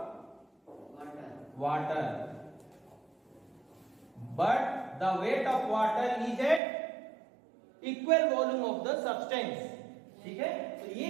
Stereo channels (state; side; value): drops out; left; at 6.6 s